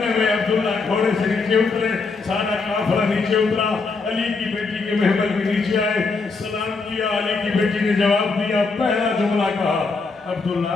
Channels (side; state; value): right; quieter; 4.2 dB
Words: में अब्दुल्ला घोड़े से नीचे उतरे, सारा काफिला नीचे उतरा, अली की बेटी के महमल में नीचे आए, सलाम किया। अली की बेटी ने जवाब दिया, पहला जुमला कहा, अब्दुल्ला